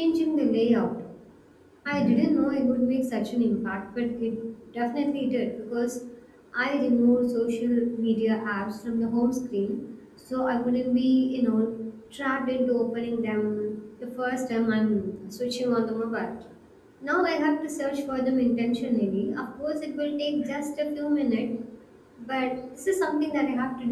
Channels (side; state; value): both; identical; correlation 1.00